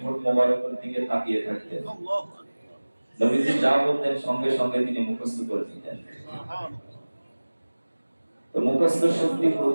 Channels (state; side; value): inverted; both; correlation -1.00